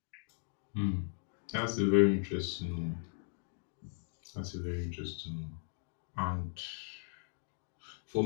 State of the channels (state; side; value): silent; right; 53 dB below the other